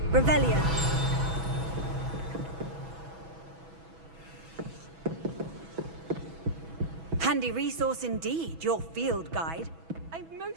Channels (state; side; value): late; left; 6.1 ms